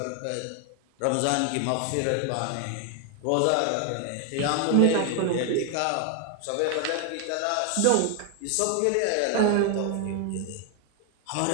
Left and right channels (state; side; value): different; both; correlation 0.00